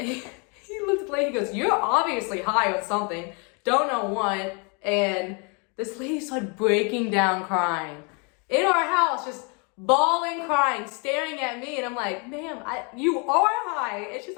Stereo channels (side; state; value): right; quieter; 34.1 dB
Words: looked at the lady, he goes, you're obviously high on something. Don't know what. And this lady started breaking down crying in our house, just bawling, crying, staring at me. And I'm like, ma'am, you are high. And she's